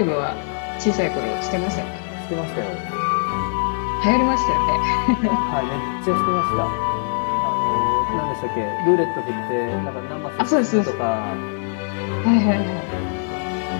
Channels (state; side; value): silent; right; 64 dB below the other